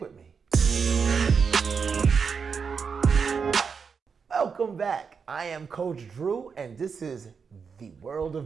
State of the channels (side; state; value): left; quieter; 5.9 dB